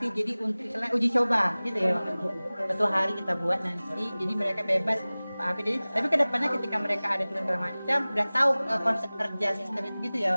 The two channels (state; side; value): inverted; both; correlation -0.99